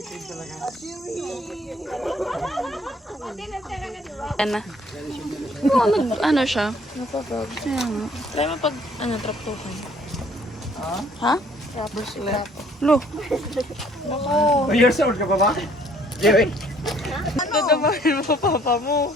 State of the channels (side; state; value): both; normal; correlation 0.60